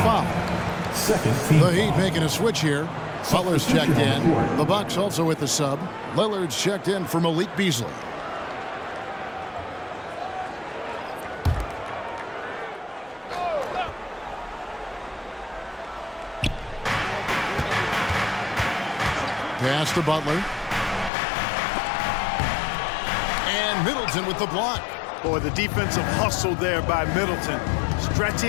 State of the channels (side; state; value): right; drops out; at 21.1 s